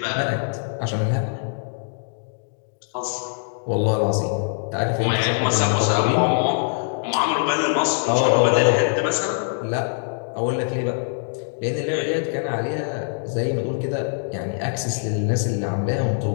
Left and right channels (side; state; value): right; silent; digital silence